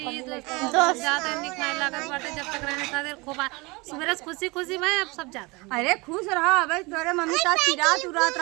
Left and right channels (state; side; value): quieter; left; 25.6 dB